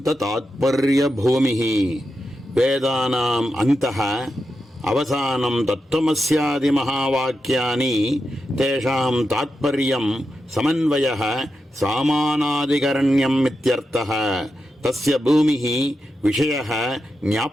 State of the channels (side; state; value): both; normal; correlation 0.88